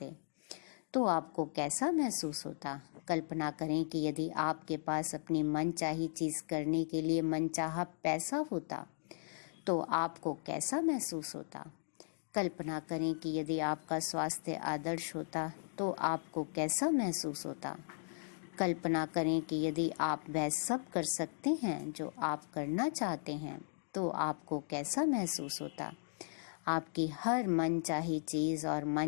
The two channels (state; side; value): silent; right; digital silence